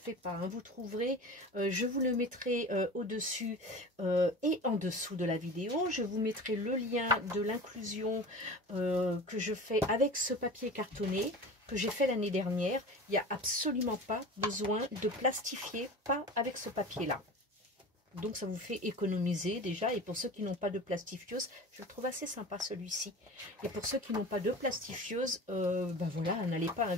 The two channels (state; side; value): normal; both; correlation 0.35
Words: pas, hein. Vous trouverez, je vous le mettrai au-dessus et en dessous de la vidéo. Je vous mettrai le lien de l'inclusion que je fais avec ce papier cartonné que j'ai fait l'année dernière. Il n'y a absolument pas besoin de plastifier, pas avec ce papier là. Donc ça vous fait économiser déjà. Et pour ceux qui n'ont pas de plastifiose, je le trouve assez sympa celui-ci. Et pour ceux qui n'ont pas de plastifiose, ben voilà, n'allez pas